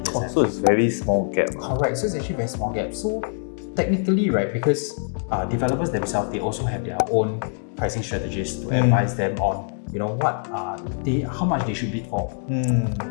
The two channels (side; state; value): right; silent; 63 dB below the other